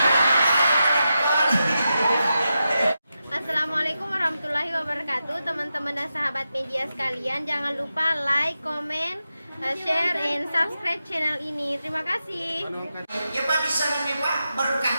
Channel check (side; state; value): both; inverted; correlation -0.89